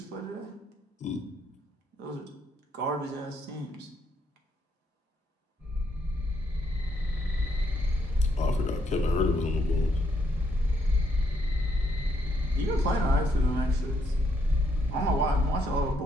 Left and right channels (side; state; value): both; normal; correlation 0.74